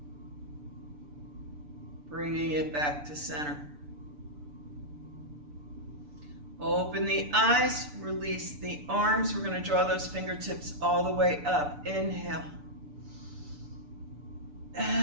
Bringing it back to center. Open the eyes, release the arms. We're going to draw those fingertips all the way up. Inhale.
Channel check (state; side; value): late; left; 6.8 ms